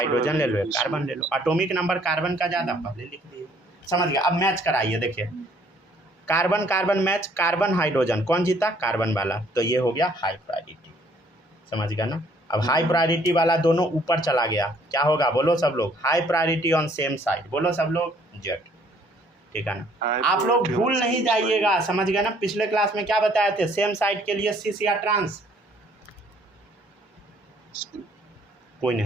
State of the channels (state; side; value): normal; both; correlation 0.62